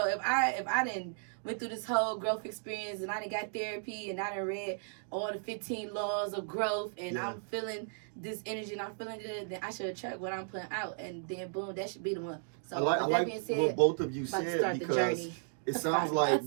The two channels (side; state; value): left; silent; digital silence